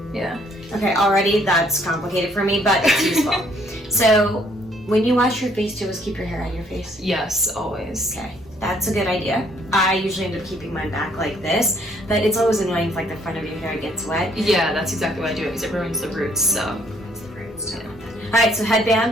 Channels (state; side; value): normal; both; correlation 0.65